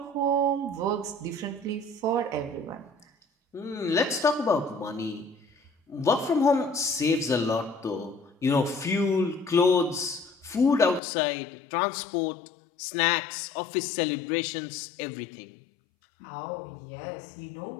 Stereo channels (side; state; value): right; drops out; at 11.0 s